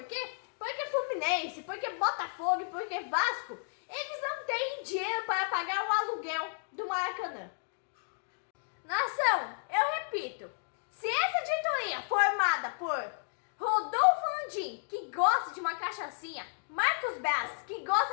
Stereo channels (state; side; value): silent; right; digital silence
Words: quê? Porque Fluminense, porque Botafogo, porque Vasco, eles não têm dinheiro para pagar o aluguel do Maracanã. Nação, eu repito, se essa diretoria formada por Rodolfo Landim, que gosta de uma cachaçinha, Marcos Braz, que